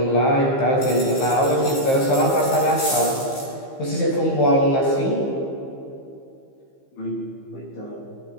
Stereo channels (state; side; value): late; right; 15 ms